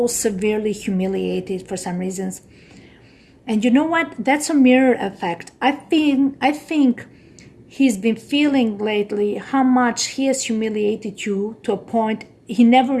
severely humiliated for some reasons. And you know what? That's a mirror effect. I think he's been feeling lately how much he has humiliated you, to a point he never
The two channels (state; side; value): identical; both; correlation 1.00